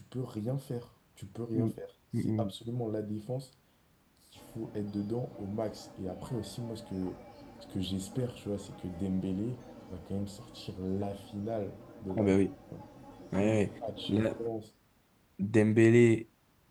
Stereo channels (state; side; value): identical; both; correlation 1.00